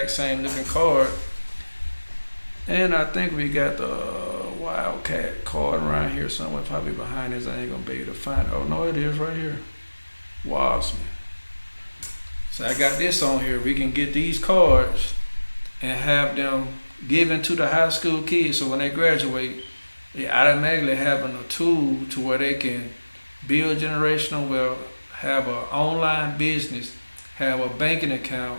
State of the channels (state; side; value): inverted; both; correlation -1.00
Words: same looking card. And I think we got the Wildcat card around here somewhere, probably behind this. I ain't gonna be able to find it. Oh no, it is right here. Wasman. So I got this on here. We can get these cards and have them given to the high school kids, so when they graduate, they automatically having a tool to where they can build generational wealth, have an online business, have a banking account,